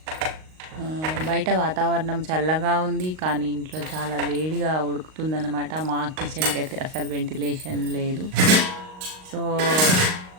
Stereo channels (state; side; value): late; left; 38 ms